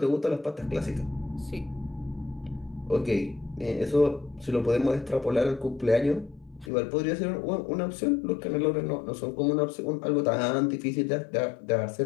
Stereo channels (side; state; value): right; drops out; at 6.7 s